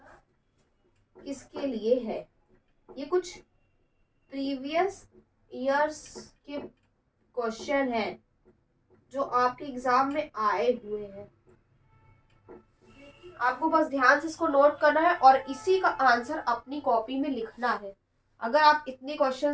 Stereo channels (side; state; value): both; identical; correlation 1.00